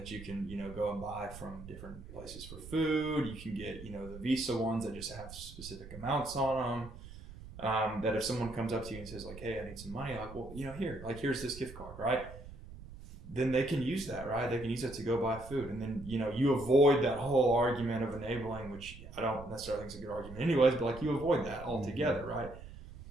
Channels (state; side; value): noise; right; rumble, 14 dB below the sound